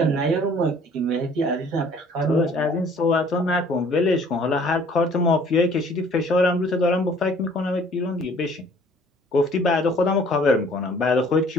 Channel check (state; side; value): normal; both; correlation 0.55